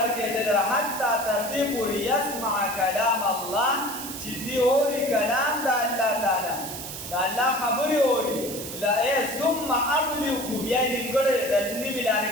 دلته حتی تر دې پورې یسمع کلام الله چې دی اوري کلام د الله تعالی د الله خبرې اوري ثم ابلغه بیا نیمګړی د نیمې لارې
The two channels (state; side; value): noise; right; hiss, 9 dB below the sound